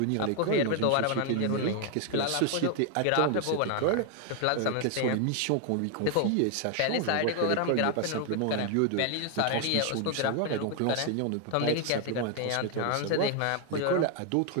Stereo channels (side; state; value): both; different; correlation 0.01